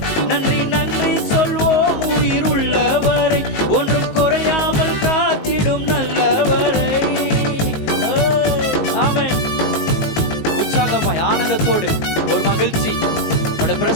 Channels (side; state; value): right; late; 19 ms